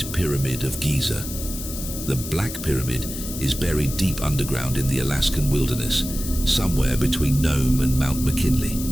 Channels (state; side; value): noise; left; hiss, 9 dB below the sound